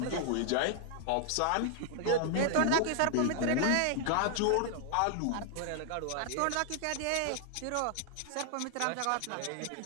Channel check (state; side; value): different; both; correlation 0.00